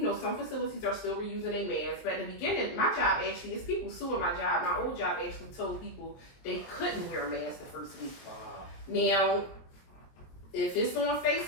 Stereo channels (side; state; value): right; late; 22 ms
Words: some facilities are still reusing their masks. But in the beginning, my job actually is people suing my job. My old job actually told people they couldn't wear a mask the first week. Wow. Now, if it's on